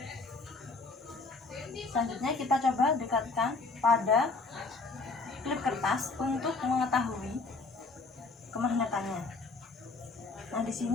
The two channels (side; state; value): right; quieter; 3.8 dB